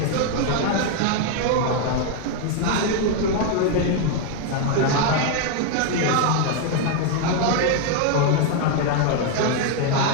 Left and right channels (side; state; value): both; different; correlation 0.00